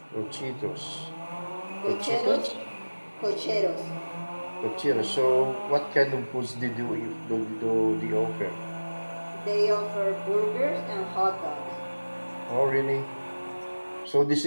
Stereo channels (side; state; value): both; inverted; correlation -1.00